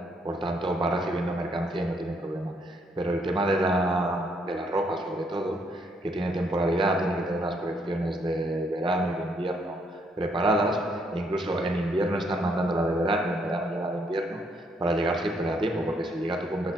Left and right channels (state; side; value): normal; both; correlation 0.71